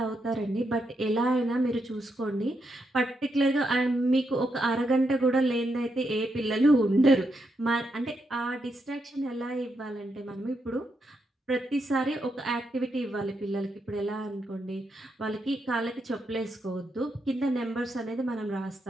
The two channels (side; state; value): both; normal; correlation 0.82